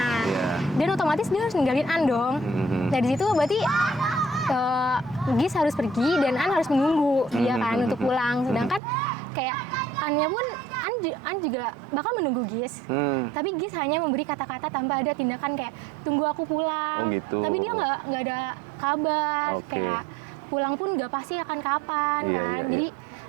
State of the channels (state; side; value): drops out; left; at 8.8 s